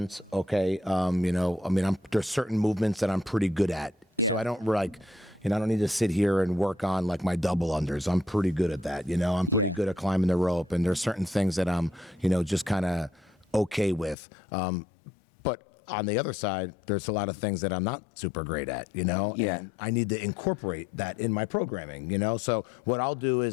Okay. There's certain movements that I'm pretty good at. So I don't I don't need to sit here and work on like my double unders. I'm pretty good at that. I'm pretty good at climbing the rope, and there's certain things that I'm, just kind of okay with. But on the other side, there's a lot of things that I'm not super great at, and I need to incorporate that in my programming, So what I'll do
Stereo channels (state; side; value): drops out; right; at 14.2 s